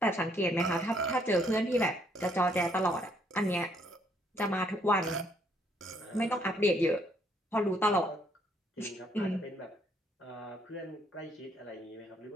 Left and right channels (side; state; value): both; normal; correlation 0.68